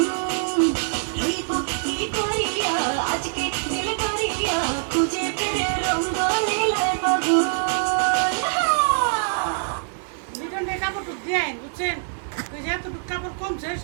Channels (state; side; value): silent; left; digital silence